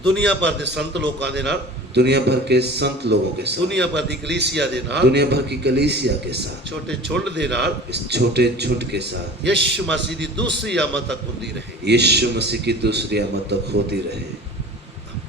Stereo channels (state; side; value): normal; both; correlation 0.39